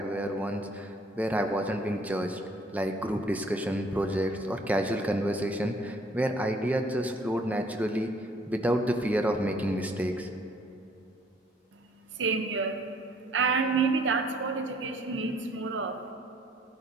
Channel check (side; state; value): both; normal; correlation 0.61